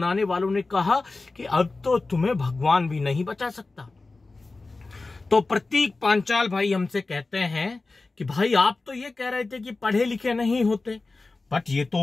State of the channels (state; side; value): quieter; right; 3.5 dB